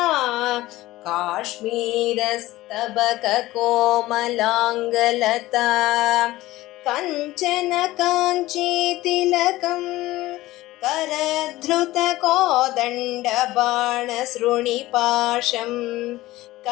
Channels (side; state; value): right; quieter; 17.5 dB